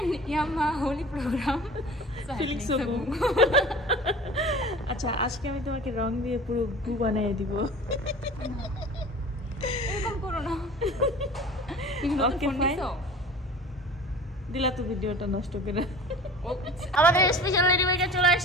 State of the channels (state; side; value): normal; both; correlation 0.40